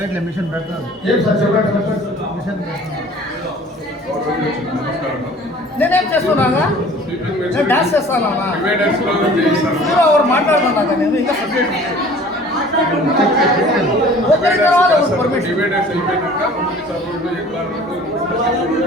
మిషన్ పెడతారు. ఏం సార్ చెప్పండి. మిషన్ నేనేం చేస్తున్నాగా, నేను డాన్స్ చేస్తానా, ఎవరు మాట్లాడుతున్నాగా, నేను ఇంకా సబ్జెక్ట్ ఒకరి తర్వాత పర్మిషన్.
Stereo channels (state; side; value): normal; both; correlation 0.48